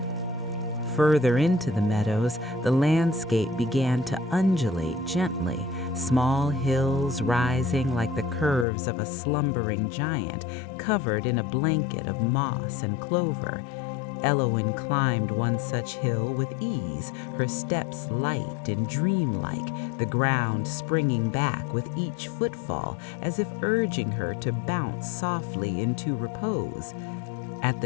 Further into the meadows, the landscape began to undulate gently, small hills rising like the curves of a slumbering giant, covered in a blanket of moss and clover. Elowen climbed one such hill with ease, her steps light and dreamlike, the ground springing back with each footfall, as if urging her to bounce softly into repose. At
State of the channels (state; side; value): drops out; right; at 8.7 s